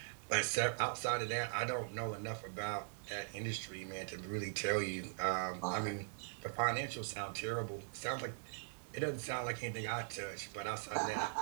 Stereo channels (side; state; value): left; silent; digital silence